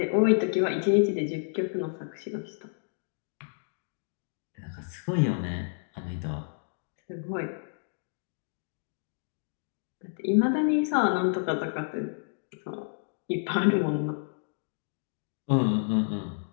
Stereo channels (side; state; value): right; silent; digital silence